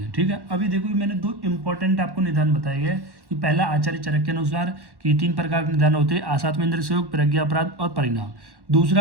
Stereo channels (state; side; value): late; left; 1.1 ms